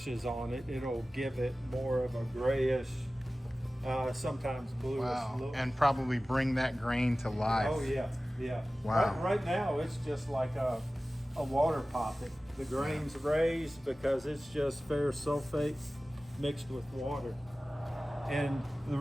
is on it, it'll give it more of a grayish, sometimes bluish look. And probably bring that grain to life. Oh yeah, yeah. Wow. Right now it's just like a water poppet. The grain's raised because it's just ferrous sulfate mixed with water. And the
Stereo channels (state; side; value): normal; both; correlation 0.96